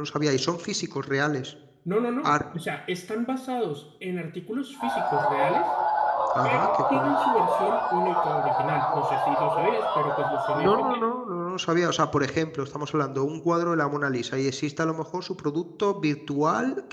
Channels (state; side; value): identical; both; correlation 1.00